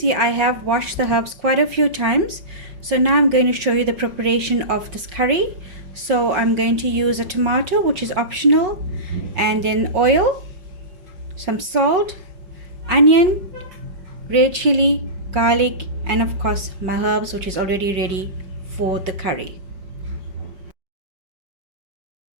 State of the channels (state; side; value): late; left; 5.5 ms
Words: I have washed the herbs quite a few times. So now I'm going to show you the preparation of this curry. So I'm going to use a tomato, which is optional, and then oil, some salt, onion, red chili, garlic, and of course my herbs, which is already ready for the curry.